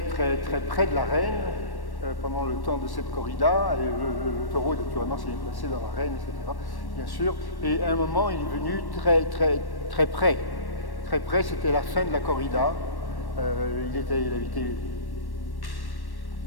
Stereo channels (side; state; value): right; late; 1.1 ms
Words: près de l'arène pendant le temps de cette corrida. Et le taureau, naturellement, s'est placé dans l'arène, etc., bien sûr. Et à un moment, il est venu très près. Très près, c'était la fin de la corrida. Il avait été